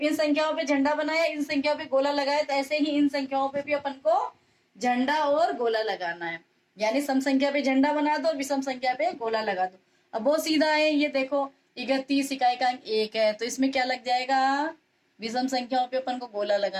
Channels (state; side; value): identical; both; correlation 1.00